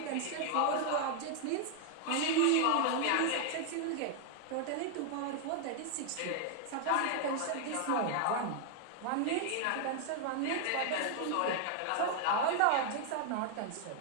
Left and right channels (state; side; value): different; both; correlation 0.00